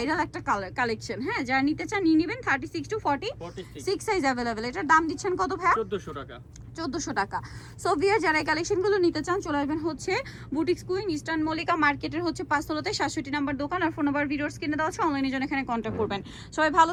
একটা কালেকশন। হ্যাঁ, যারা নিতে চান নিয়ে নেবেন। 36 টু 46 সাইজ অ্যাভেলেবেল। এটার দাম দিচ্ছেন কত ভাই? 1400 টাকা। 1400 টাকা। সো ভিউয়ার, যারা এই কালেকশনগুলো নিতে চান চলে আসবেন হচ্ছে বুটিক্স কুইন, ইস্টার্ন মল্লিকা মার্কেটের হচ্ছে 5 তলাতে 67 নাম্বার দোকান। আর ফোন নাম্বার ভিডিওর স্ক্রিনে দেওয়া আছে, অনলাইনে জন্য এখানে কন্ট্যাক্ট করবেন। সবাই ভালো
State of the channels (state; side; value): identical; both; correlation 1.00